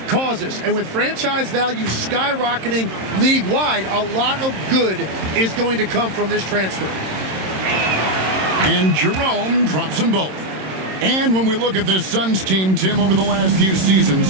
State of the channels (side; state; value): left; late; 26 ms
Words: causes, and with franchise value skyrocketing league-wide, a lot of good is going to come from this transfer. And Jerome drops them both. And when we look at this Suns team, Tim, over the last few